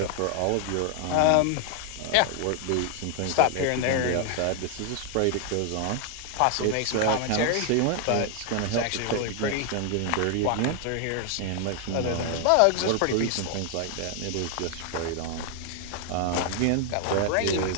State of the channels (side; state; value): both; different; correlation 0.00